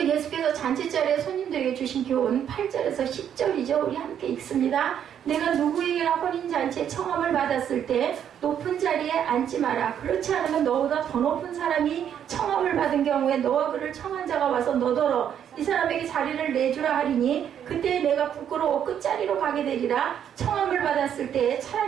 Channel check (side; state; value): left; quieter; 9.2 dB